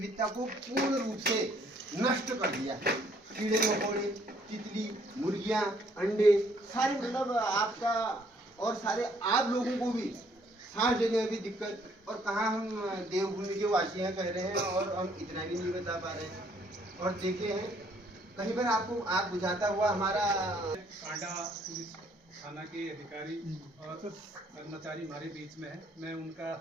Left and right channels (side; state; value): both; normal; correlation 0.65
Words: को पूर्ण रूप से नष्ट कर दिया। कीड़े मकोड़े, तितली, मुर्गियां, अंडे, सारे मतलब आपका और सारे आप लोगों को भी सांस लेने में भी दिक्कत। और कहाँ हम देवभूमि के वासी हैं कह रहे हैं, और हम इतना भी नहीं बता पा रहे हैं। और देखे हैं कहीं पर आपको आग बुझाता हुआ हमारा कांडा पुलिस थाना के अधिकारी और कर्मचारी हमारे बीच में है। मैं उनका